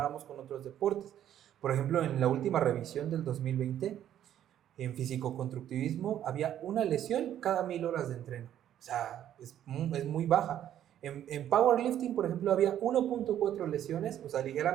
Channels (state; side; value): quieter; left; 11.0 dB